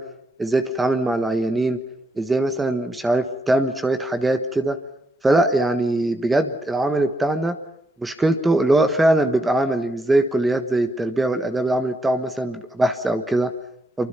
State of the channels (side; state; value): both; normal; correlation 0.79